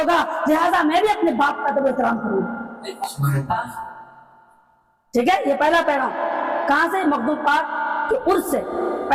لہٰذا میں بھی اپنے باپ کا ادب و احترام کروں۔ ٹھیک ہے، یہ پہلا پیغام کہاں سے؟ مخدوم پاک کے عرس سے،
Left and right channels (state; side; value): identical; both; correlation 1.00